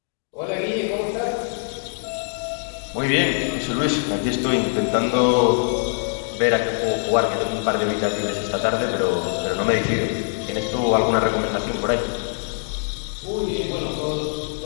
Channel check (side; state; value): right; silent; digital silence